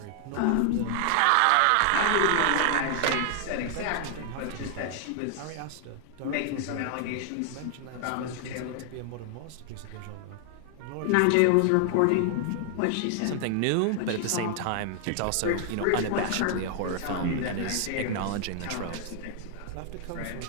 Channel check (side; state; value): both; different; correlation 0.00